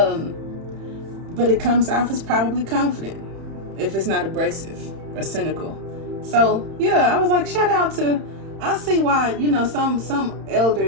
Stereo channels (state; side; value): late; left; 31 ms